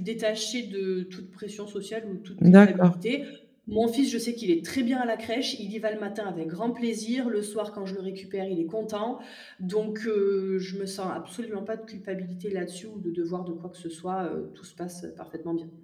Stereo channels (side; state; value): both; identical; correlation 1.00